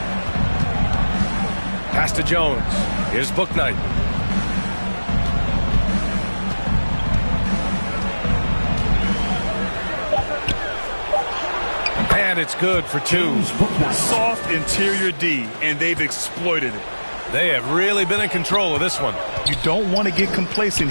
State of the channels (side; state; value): both; inverted; correlation -1.00